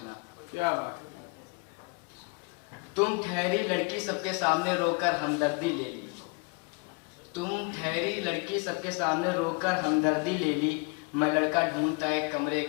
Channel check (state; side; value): quieter; right; 31.6 dB